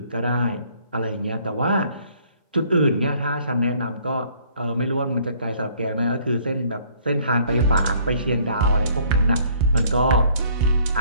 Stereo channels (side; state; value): both; inverted; correlation -0.60